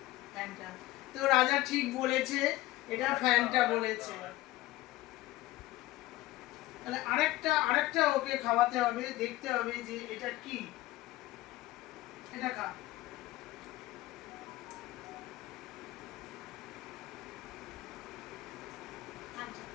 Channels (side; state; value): right; quieter; 17.2 dB